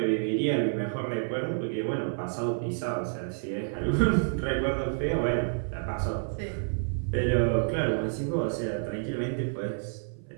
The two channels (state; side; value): silent; left; 57 dB below the other